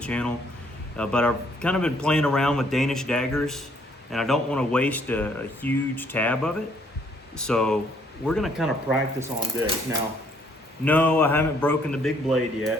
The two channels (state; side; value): normal; both; correlation 0.66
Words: But I've kind of been playing around with Danish daggers, and I don't want to waste a huge tab of it. So we're going to kind of practice on this. Now, no, I haven't broken the big blade